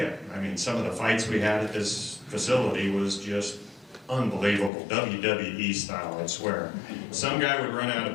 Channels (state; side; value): drops out; right; at 4.7 s